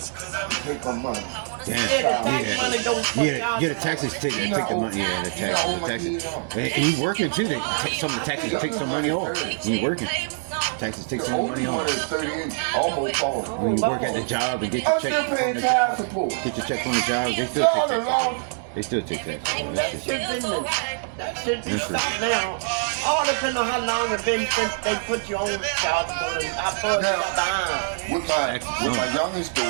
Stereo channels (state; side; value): silent; left; digital silence